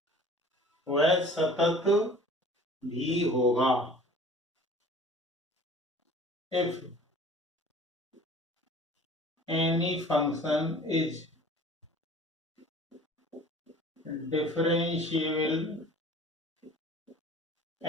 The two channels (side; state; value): both; normal; correlation 0.46